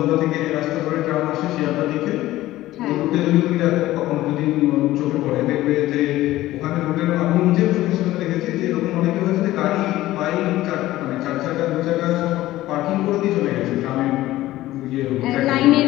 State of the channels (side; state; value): right; quieter; 15.9 dB